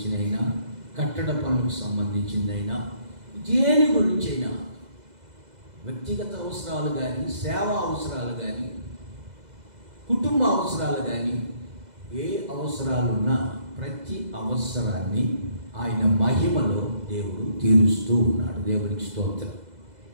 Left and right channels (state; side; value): late; left; 2.0 ms